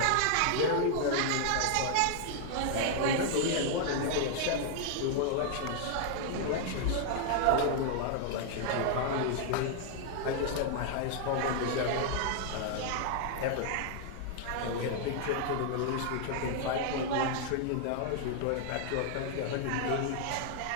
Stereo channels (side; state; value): both; different; correlation 0.00